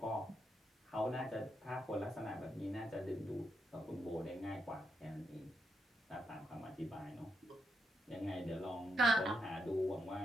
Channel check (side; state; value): both; normal; correlation 0.82